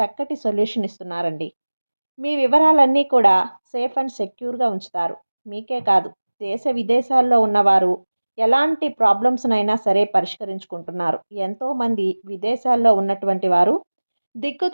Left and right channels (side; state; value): both; inverted; correlation -1.00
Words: సొల్యూషన్ ఇస్తున్నారండి. మీ వివరాలన్నీ కూడా సేఫ్ అండ్ సెక్యూర్గా ఉంచుతారు. మీకే కాదు, దేశ విదేశాల్లో ఉన్నవారు ఎలాంటి ప్రాబ్లమ్స్నైనా సరే పరిష్కరించుకుంటున్నారు. ఎంతోమంది విదేశాల్లో ఉన్నటువంటి వారు,